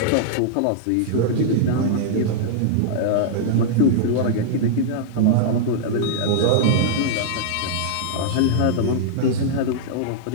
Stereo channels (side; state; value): both; different; correlation -0.02